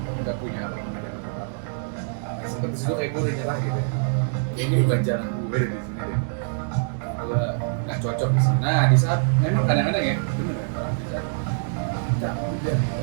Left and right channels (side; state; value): left; silent; digital silence